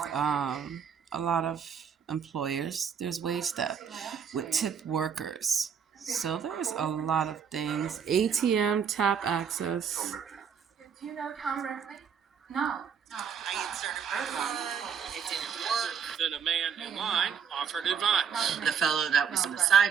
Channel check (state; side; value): quieter; left; 7.1 dB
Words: a lot of employers, there's wage theft with tip workers. So there's a lot of things. ATM tap access. Do you know Tom Ripley? No. I inserted my phone. It didn't work. Then a man in line offered advice. The fellow that was on the